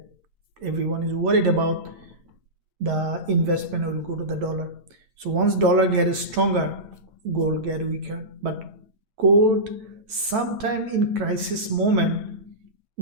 everyone is worried about, the investment will go to the dollar. So once dollar gets stronger, gold get weaker. But gold, sometime in crisis moment,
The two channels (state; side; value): late; left; 9.1 ms